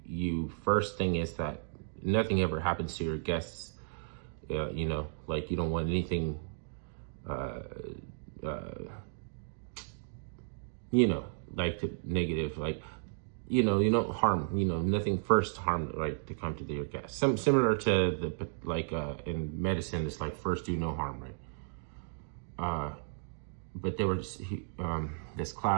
first thing is that nothing ever happens to your guests. You know, like you don't want anything. You know, like negative, like, you know, you don't harm, you know, nothing first harm, right, to come to your guests. Similar to the, like, in medicine, it's like first do no harm, right? But there was this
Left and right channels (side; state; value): left; silent; digital silence